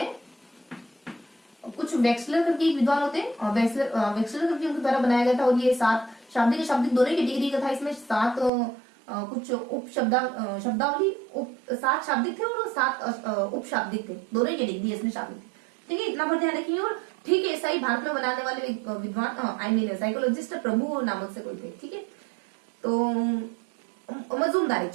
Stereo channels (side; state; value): left; drops out; at 8.5 s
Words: कुछ वेक्सलर करके एक विद्वान होते हैं, वेक्सलर करके उनके द्वारा बनाया गया था। और ये 7 शाब्दिक दोनों की डिग्री का था। इसमें 7 कुछ उप शब्दावली 7 शाब्दिक थे और 7 उप शाब्दिक थे, दोनों की डिग्री इसमें शामिल थी, ठीक है। इतना पर ध्यान रखिए। और ठीक है, ऐसा ही भारत में बनाने वाले विद्वान साइकोलॉजिस्ट प्रभु नामक से कोई थे, ठीक है। तो मजूमदार थे,